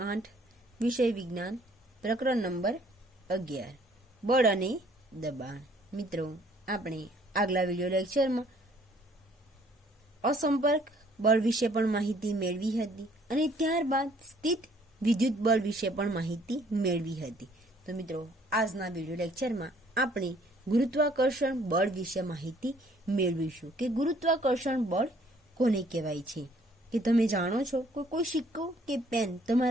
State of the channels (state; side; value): normal; both; correlation 0.61